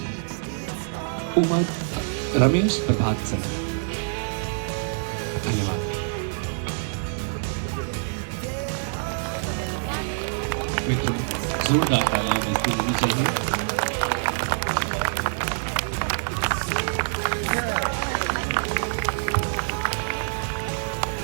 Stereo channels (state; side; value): silent; left; digital silence